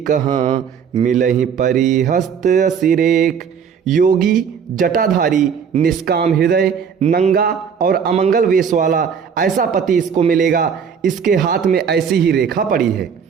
कहाँ मिलहि परिहस्त असिरेक। योगी जटाधारी निष्काम हृदय नंगा और अमंगल वेश वाला ऐसा पति इसको मिलेगा, इसके हाथ में ऐसी ही रेखा पड़ी है।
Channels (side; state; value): left; quieter; 7.0 dB